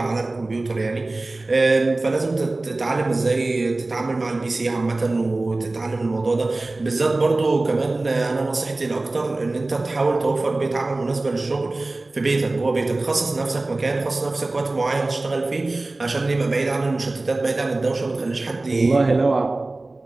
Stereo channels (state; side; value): quieter; left; 3.1 dB